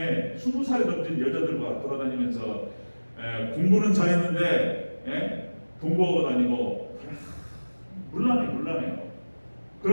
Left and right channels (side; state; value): both; inverted; correlation -1.00